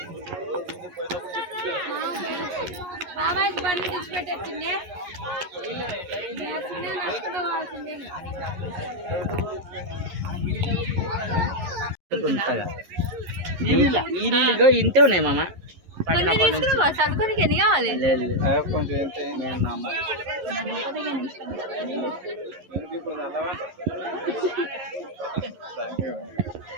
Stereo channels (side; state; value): left; late; 11 ms